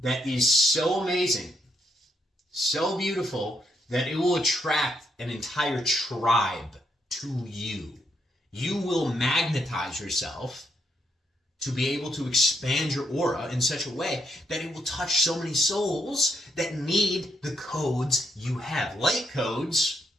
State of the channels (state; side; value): normal; both; correlation 0.76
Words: is so amazing, so beautiful, that it will attract an entire tribe to you. You will magnetize yourself to be able to expand your aura in such a way that it will touch so many souls that need the codes you have. Light codes,